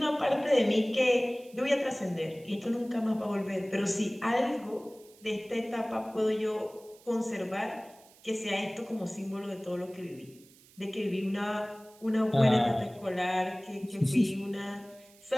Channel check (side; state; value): right; noise; hiss, 26 dB below the sound